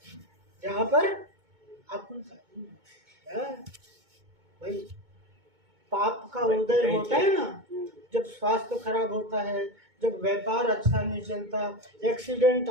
जहाँ पर आकुलता नहीं है। भाई पाप का उदय होता है ना, जब स्वास्थ्य खराब होता है, जब व्यापार अच्छा नहीं चलता, एक्सीडेंट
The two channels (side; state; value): left; late; 2.2 ms